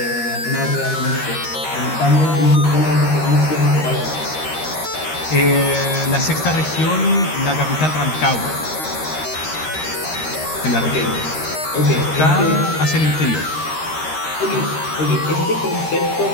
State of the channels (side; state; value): right; late; 13 ms